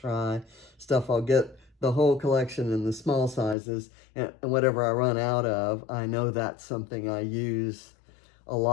stuff. I'll get the whole collection in the small sizes, and whatever I run out of, I know that's something I use a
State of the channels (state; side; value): drops out; right; at 3.6 s